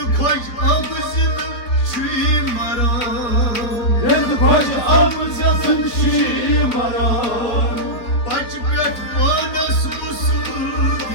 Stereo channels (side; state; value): right; late; 4.4 ms